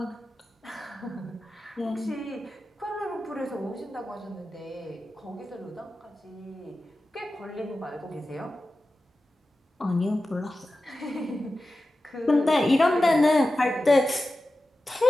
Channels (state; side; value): normal; both; correlation 0.94